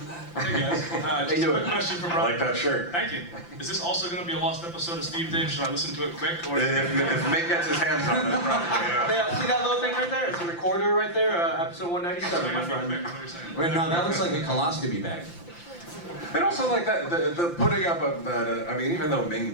Hey guys, just a quick question for I Brian. like that shirt. Thank you. Is this also going to be a lost episode of Steve Dave? Should I listen to it quick? Or If Mick gets his hands on it, probably, yeah. See that little thing right there? It's a recorder right there, episode 197, my friend. Quick, what are you saying? Wait, no, that looks like a coloscopy bag. And also like that, the putting up of that, I mean, even though Ming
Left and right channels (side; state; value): right; late; 5.8 ms